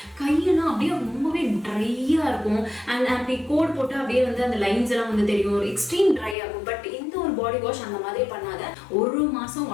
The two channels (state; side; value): drops out; right; at 6.4 s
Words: கையெல்லாம் அப்படியே ரொம்பவே ட்ரையாக இருக்கும். அண்ட் அப்படி கோட் போட்டு அப்படியே வந்து அந்த லைன்ஸ் எல்லாம் வந்து தெரியும், ஒரு எக்ஸ்ட்ரீம் ட்ரை ஆகும். பட் இந்த ஒரு பாடி வாஷ் அந்த மாதிரி பண்ணாத 1 மாதம்